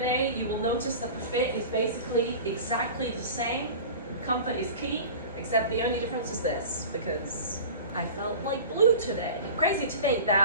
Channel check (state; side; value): inverted; both; correlation -0.36